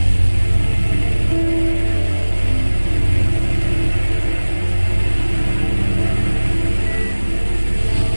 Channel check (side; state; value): both; inverted; correlation -1.00